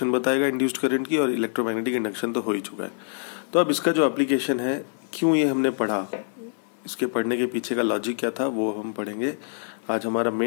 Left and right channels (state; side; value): silent; right; digital silence